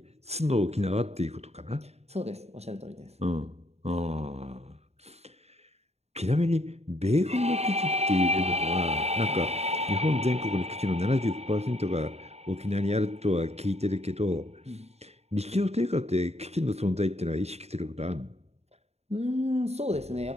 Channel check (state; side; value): late; left; 0.31 ms